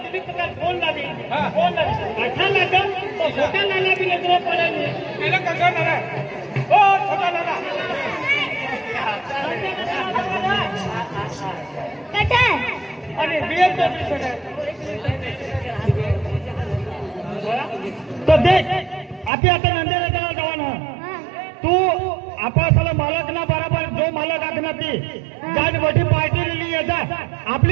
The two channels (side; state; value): left; drops out; at 19.3 s